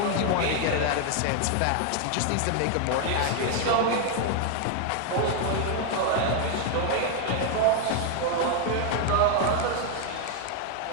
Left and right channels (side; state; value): both; different; correlation 0.01